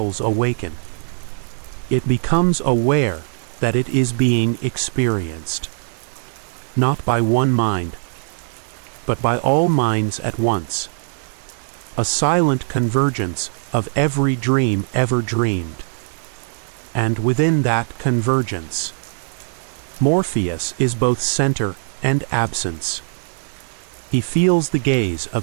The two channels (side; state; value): left; silent; digital silence